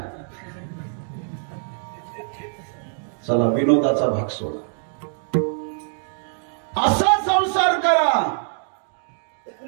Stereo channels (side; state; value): left; silent; digital silence